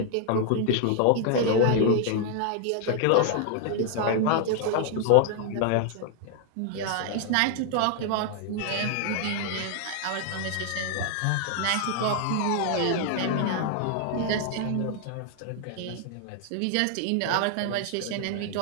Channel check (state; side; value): different; both; correlation 0.00